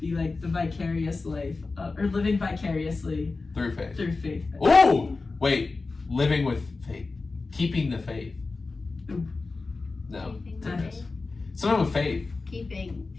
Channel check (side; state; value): right; quieter; 3.8 dB